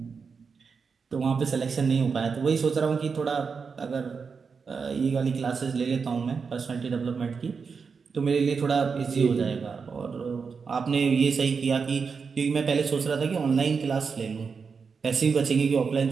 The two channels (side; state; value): left; quieter; 5.5 dB